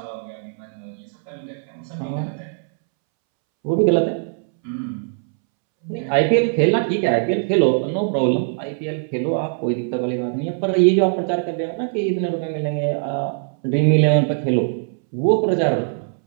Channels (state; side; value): silent; left; 65 dB below the other